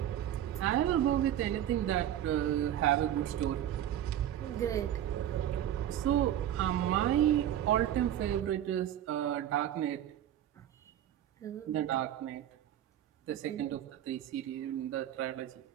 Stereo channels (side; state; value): left; quieter; 11.3 dB